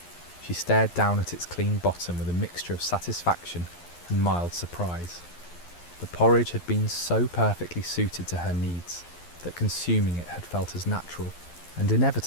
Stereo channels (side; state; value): right; late; 11 ms